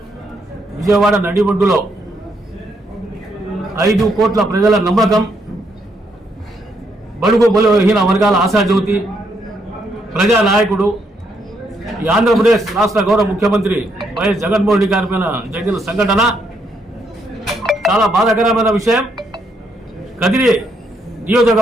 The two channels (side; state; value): both; normal; correlation 0.75